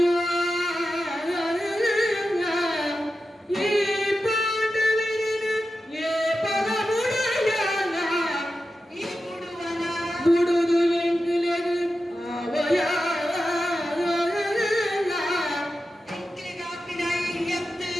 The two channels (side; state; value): both; normal; correlation 0.91